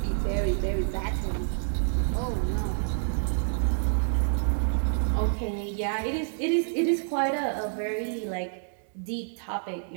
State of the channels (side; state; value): left; silent; digital silence